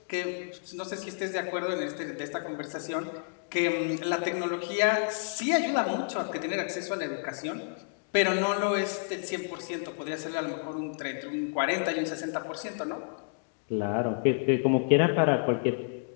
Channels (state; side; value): silent; right; digital silence